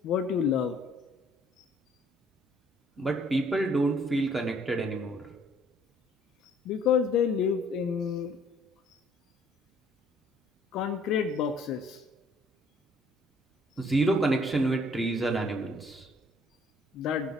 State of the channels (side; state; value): both; normal; correlation 0.61